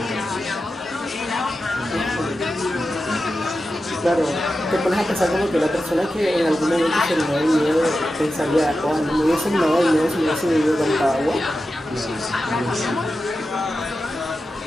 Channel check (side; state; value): both; normal; correlation 0.91